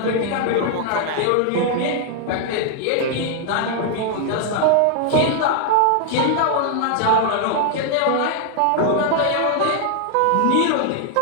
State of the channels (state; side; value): different; both; correlation 0.00